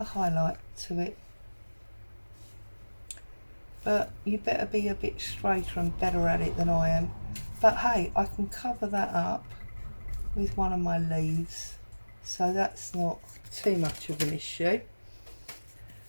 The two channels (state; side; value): inverted; both; correlation -1.00